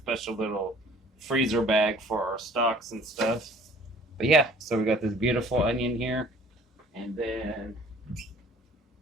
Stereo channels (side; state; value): both; normal; correlation 0.52